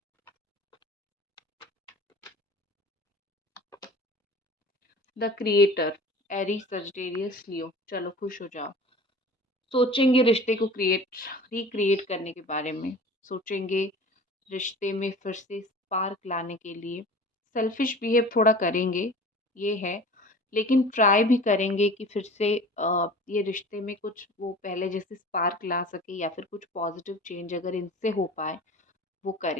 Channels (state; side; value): normal; both; correlation 0.41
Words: द क्रिएटर, एरीज, सजिटेरियस, लियो। चलो खुश हो जाओ। सोचेंगे रिश्ते को रिक्रिएट करने के बारे में, सोचेंगे रिश्ते में फिर से स्पार्क लाने के लिए। सेल्फिश बिहेव थोड़ा करेंगे, ये है, लेकिन ट्राई भी करेंगे कि फिर से ये रिश्ते में कुछ वो पहले जैसे स्पार्क ला सके, या फिर कुछ पॉजिटिव चेंज अगर इनसे हो पाए वो